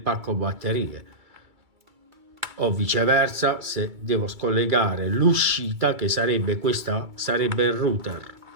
batterie, o viceversa. Se devo scollegare l'uscita, che sarebbe questa, sarebbe il router,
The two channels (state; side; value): late; left; 2.3 ms